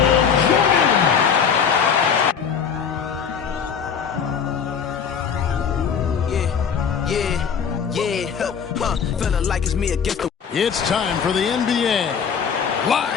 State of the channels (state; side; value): quieter; right; 7.0 dB